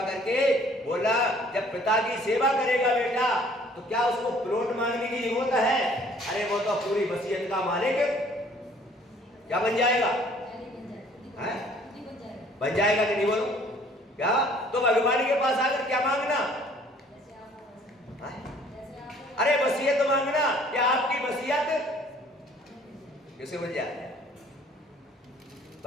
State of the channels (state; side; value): normal; both; correlation 0.57